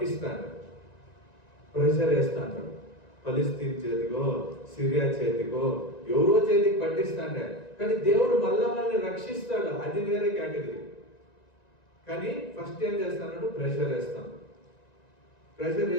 ప్రెషర్ వేస్తాడు. ఫలిస్తీన్ చేతికో సిరియా చేతికో ఎవరో చేతికి పట్టిస్తాడే, కానీ దేవుడు మళ్ళా వాళ్ళని రక్షిస్తాడు. అది వేరే కేటగిరీ. కానీ ఫస్ట్ ఏం చేస్తాడు? ప్రెషర్ వేస్తాడు. ప్రెషర్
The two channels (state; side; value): late; right; 1.9 ms